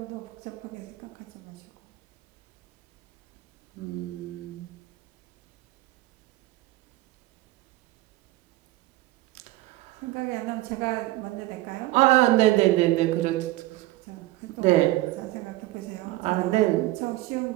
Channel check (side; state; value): left; quieter; 17.9 dB